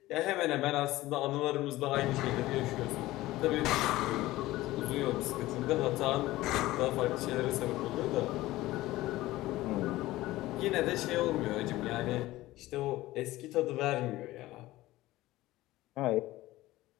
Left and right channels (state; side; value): quieter; right; 17.3 dB